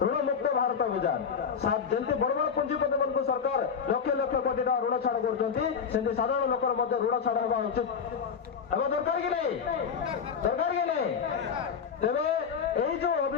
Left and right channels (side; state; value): right; quieter; 6.6 dB